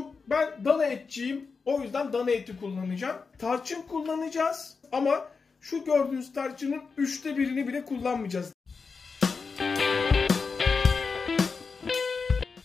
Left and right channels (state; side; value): quieter; right; 4.9 dB